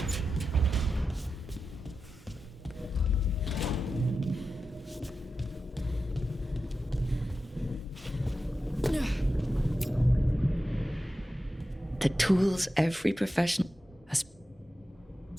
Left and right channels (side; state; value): both; normal; correlation 0.91